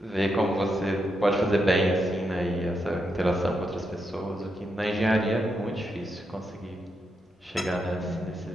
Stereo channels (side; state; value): both; normal; correlation 0.83